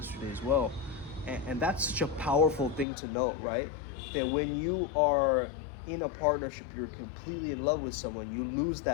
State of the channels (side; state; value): right; drops out; at 2.9 s